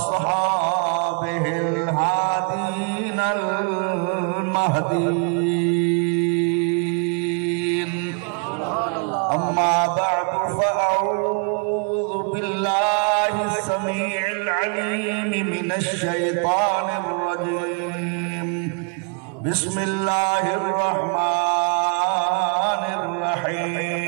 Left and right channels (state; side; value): quieter; left; 39.6 dB